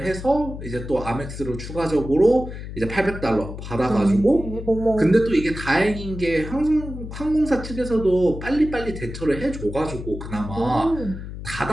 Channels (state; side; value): noise; left; hum, 9 dB below the sound